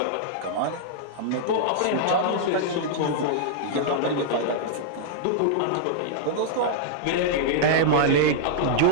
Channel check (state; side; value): different; both; correlation -0.02